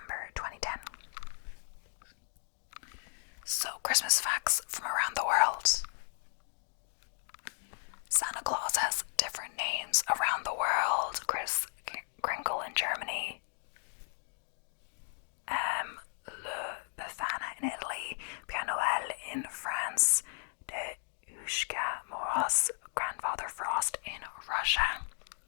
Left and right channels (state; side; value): silent; right; digital silence